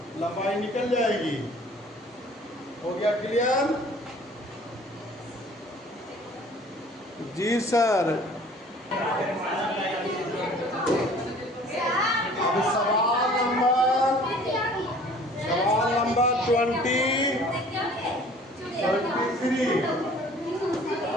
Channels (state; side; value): normal; both; correlation 0.50